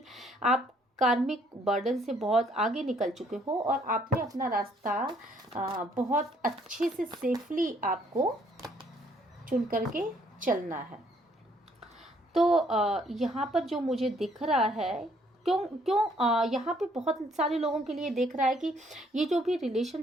आप कार्मिक बर्डन से बहुत आगे निकल चुके हो, और आपने अपना रास्ता बहुत अच्छे से सेफली आपको चुन करके चलना है। तो यहाँ पर जो मुझे दिख रहा है, क्यों यहाँ पे बहुत सारे लोगों के लिए देख रहा है कि ये जो भी रिलेशन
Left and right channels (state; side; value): normal; both; correlation 0.66